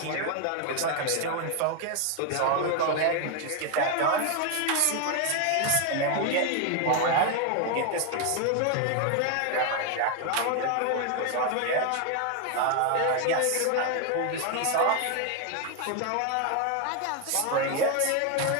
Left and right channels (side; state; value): both; different; correlation 0.01